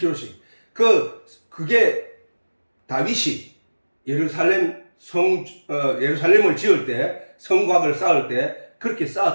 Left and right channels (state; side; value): inverted; both; correlation -1.00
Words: 그게 다윗이 예루살렘을 지을 때, 성곽을 쌓을 때 그렇게